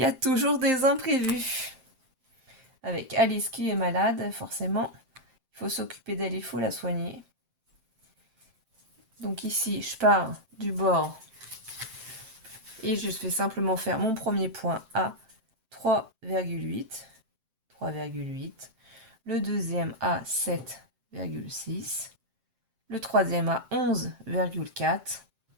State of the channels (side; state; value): left; late; 7.6 ms